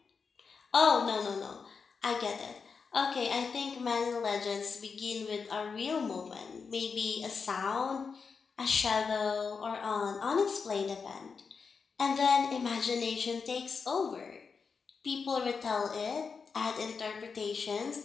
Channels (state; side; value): quieter; right; 5.3 dB